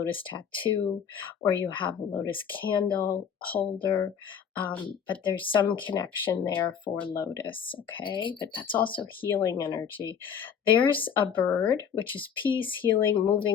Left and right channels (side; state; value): right; quieter; 7.6 dB